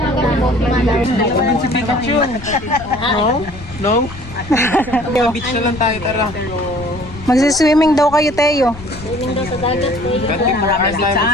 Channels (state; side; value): noise; left; rumble, 15 dB below the sound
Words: Si Pikachu. No? Beach na lang tayo, tara. Magsiswimming daw kayo, Teo. Swimming daw sa dagat, Teo. Marami sa